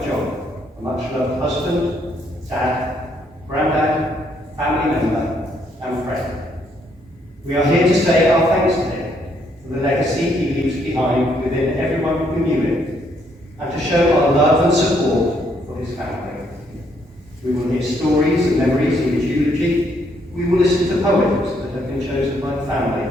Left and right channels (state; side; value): normal; both; correlation 0.71